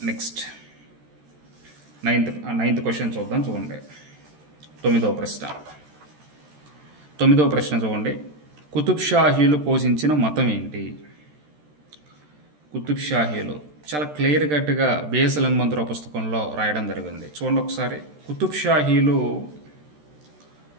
నెక్స్ట్ నైన్త్ క్వశ్చన్ చూద్దాం. చూడండి, 9వ ప్రశ్న చూడండి. కుతుబ్ షాహీలు పోషించిన మతం ఏంటి? కుతుబ్ షాహీలు చాలా క్లియర్ కట్గా బిఎస్ఎల్ హనుమంతరావు పుస్తకంలో రాయడం జరిగింది. చూడండి ఒకసారి. కుతుబ్ షాహీలు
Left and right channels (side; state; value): left; late; 13 ms